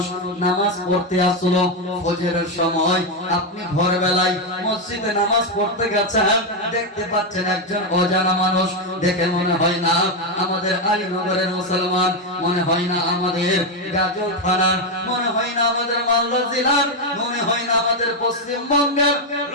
নামাজ পড়তে আসলো ফজরের সময়, আপনি ভোরবেলায় মসজিদে নামাজ পড়তে গেছেন, দেখতে পাচ্ছেন একজন অজানা মানুষ। দেখে মনে হয় না আমাদের আলীনগরের মুসলমান, মনে হয় না আমাদের গাজল থানার, মনে হয় না আমাদের মালদা জেলার, মনে হয় না আমাদের পশ্চিমবঙ্গের।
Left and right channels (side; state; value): both; normal; correlation 0.05